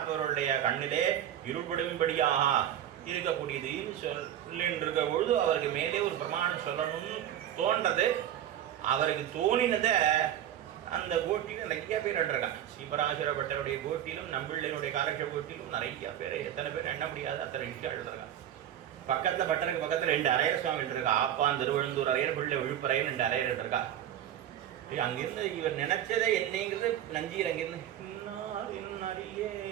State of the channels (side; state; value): left; quieter; 10.9 dB